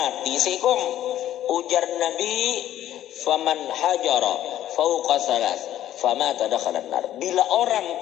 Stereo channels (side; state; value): right; quieter; 12.4 dB